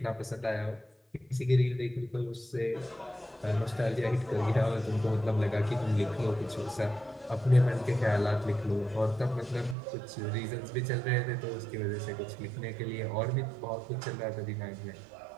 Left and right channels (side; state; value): left; drops out; at 9.8 s